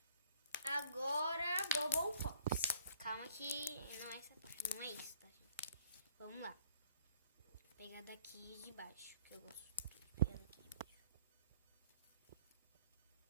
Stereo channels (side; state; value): both; inverted; correlation -0.58